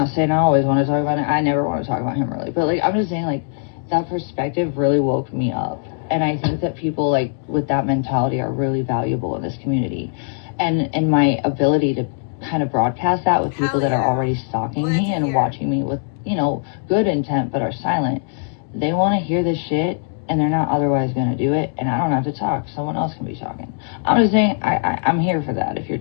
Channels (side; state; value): right; silent; digital silence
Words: saying I always want to talk about it. I never want to talk about him, really. But, like, I'm just saying, like, that perspective really woke me up. And I think that people, like, with that mentality are really valuable in this community. And my ability to kind of broadcast that with people that are already stalking me and watching me with, you know, good intent but are silent. They want to hear this shit, and they're not otherwise going to do it. And I don't have to talk. Someone else can be talking. I'm just saying I'm here for that if you're